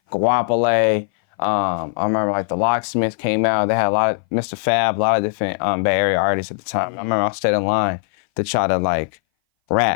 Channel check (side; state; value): right; silent; 59 dB below the other